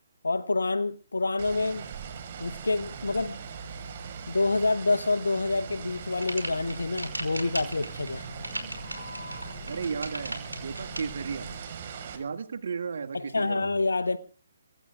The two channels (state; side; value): inverted; both; correlation -0.93